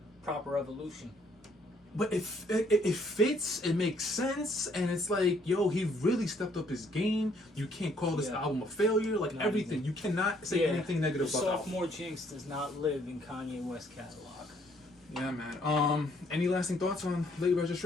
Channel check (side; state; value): both; normal; correlation 0.66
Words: proper evolution. but it fits, it makes sense, and it's like, yo, he really stepped up his game. You can't call this album a failure. Like, everything. You cannot say anything negative about the album. Sophomore jinx does not live in Kanye West catalog. Yeah, man. Any lasting thoughts on Late